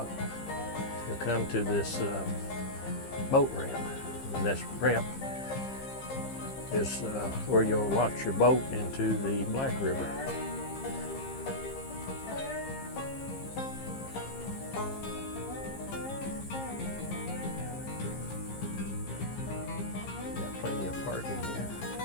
you'll come to this boat ramp, and this ramp is where you'll launch your boat into the Black River. Plenty of parking here.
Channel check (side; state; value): right; late; 15 ms